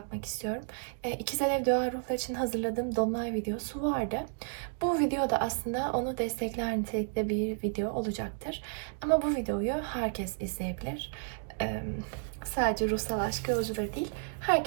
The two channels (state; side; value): silent; left; digital silence